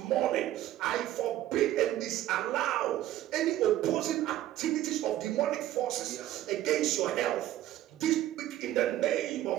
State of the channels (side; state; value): left; quieter; 13.6 dB